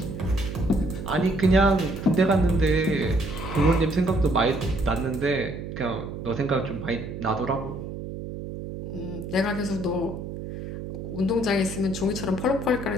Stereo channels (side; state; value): right; noise; hum, 8 dB below the sound